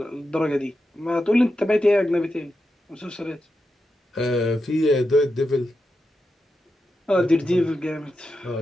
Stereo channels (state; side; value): normal; both; correlation 0.88